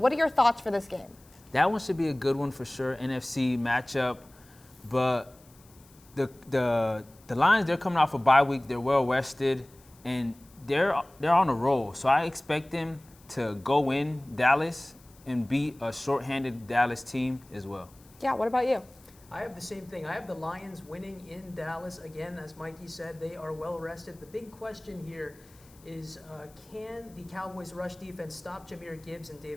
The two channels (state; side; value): noise; left; hiss, 27 dB below the sound